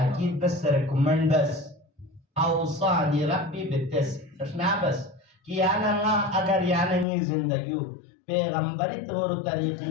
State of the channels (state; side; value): drops out; right; at 7.1 s